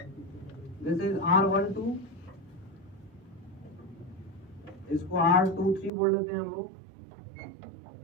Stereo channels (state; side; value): drops out; left; at 5.9 s